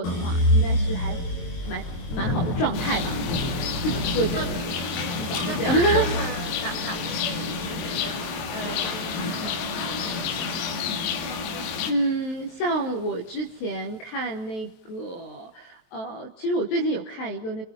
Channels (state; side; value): late; right; 24 ms